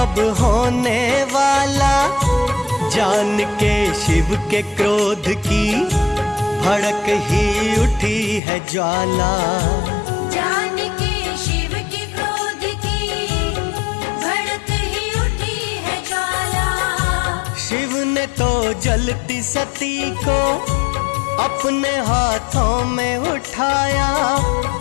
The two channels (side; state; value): right; drops out; at 8.4 s